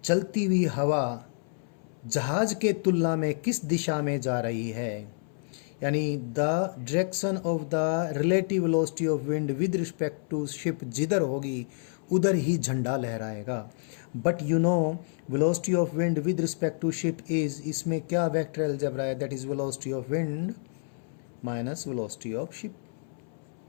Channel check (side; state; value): right; silent; 59 dB below the other